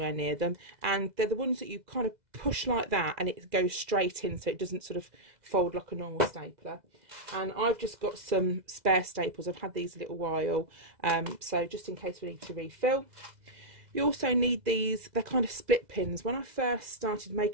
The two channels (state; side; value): late; left; 2.0 ms